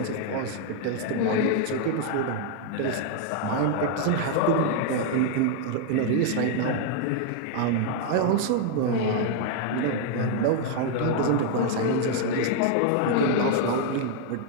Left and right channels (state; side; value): different; both; correlation 0.00